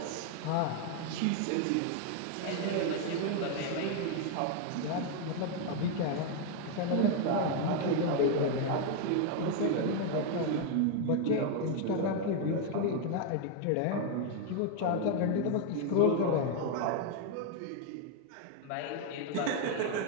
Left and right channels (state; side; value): different; both; correlation 0.01